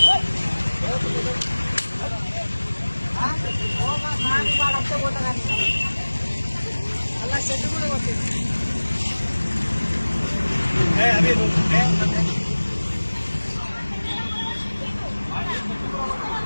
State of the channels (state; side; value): inverted; both; correlation -1.00